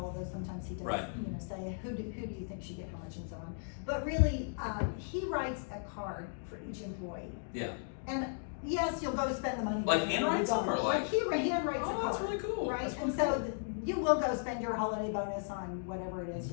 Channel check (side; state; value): right; silent; digital silence